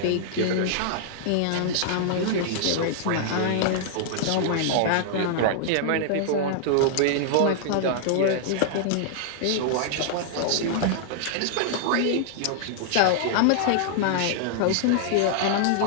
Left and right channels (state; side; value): different; both; correlation -0.01